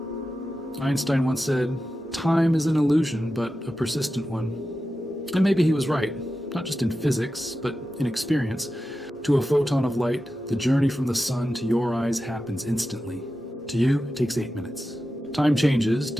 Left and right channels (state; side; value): normal; both; correlation 0.92